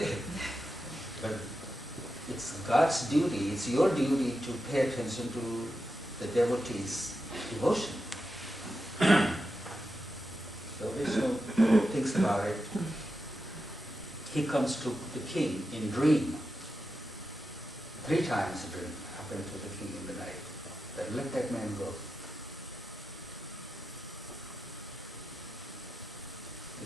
But it's God's duty, it's your duty to pay attention to the devotee's devotion. So Vishnu thinks about it. He comes to the king in dream. 3 times a dream happened to the king in the night. That let that man go. The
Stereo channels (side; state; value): both; normal; correlation 0.89